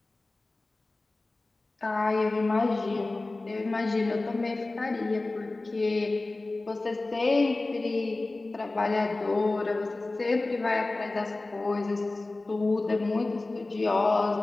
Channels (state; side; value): quieter; right; 3.1 dB